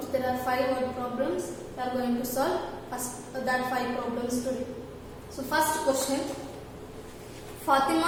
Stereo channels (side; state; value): both; identical; correlation 1.00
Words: There are 5 word problems. We are going to solve that 5 problems today. So first question.